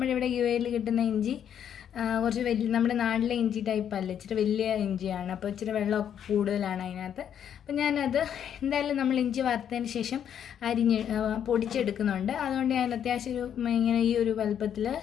ഇവിടെ UAE കിട്ടുന്ന ഇഞ്ചി കുറച്ച് വലിയ, നമ്മുടെ നാട്ടിലെ ഇഞ്ചി ടൈപ്പ് അല്ല, ഇച്ചിരി വലിയ ഇഞ്ചിയാണ്. അപ്പോൾ ഇച്ചിരി വെള്ളമൊക്കെ കൂടുതലാണ് അതിനകത്ത്. അപ്പം ഞാനത് എന്തായാലും നമ്മൾ ഇഞ്ചി വറുത്തതിന് ശേഷം പൊടിച്ചെടുക്കുന്നുണ്ട്. അതുകൊണ്ട് ഞാൻ അത്യാവശ്യം ഇങ്ങനെ ഈ ഒരു വലുപ്പത്തിൽ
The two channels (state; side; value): quieter; right; 9.1 dB